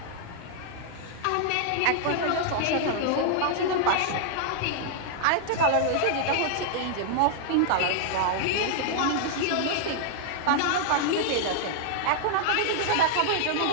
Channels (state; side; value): different; both; correlation -0.01